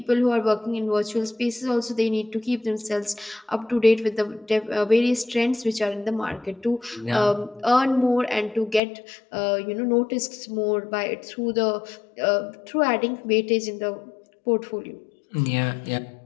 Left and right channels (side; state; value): right; drops out; at 8.8 s